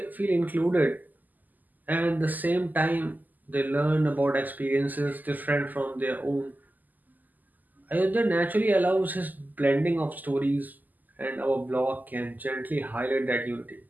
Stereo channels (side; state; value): left; late; 0.083 ms